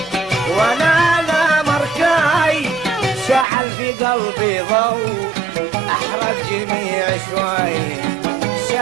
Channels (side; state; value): left; drops out; at 3.5 s